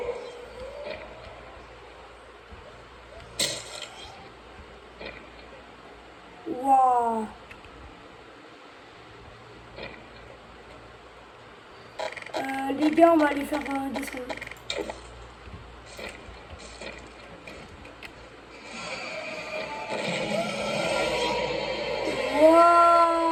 Waouh. Les gars, on va aller faire descendre. Waouh.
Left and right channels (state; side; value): identical; both; correlation 1.00